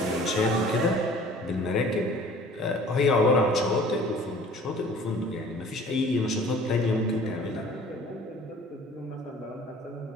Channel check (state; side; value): normal; both; correlation 0.48